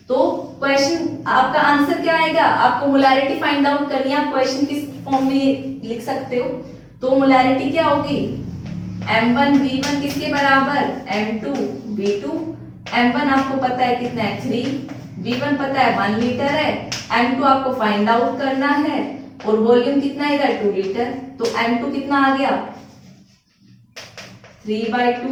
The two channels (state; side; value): identical; both; correlation 1.00